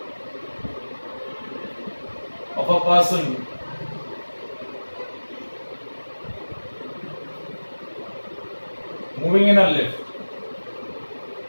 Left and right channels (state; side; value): inverted; both; correlation -1.00